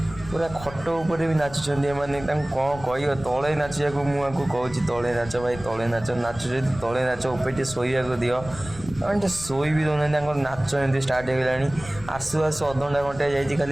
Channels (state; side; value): noise; left; rumble, 15 dB below the sound